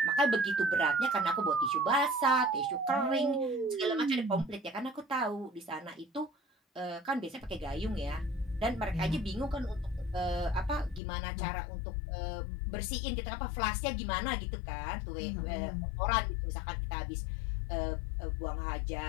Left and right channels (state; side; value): drops out; right; at 11.0 s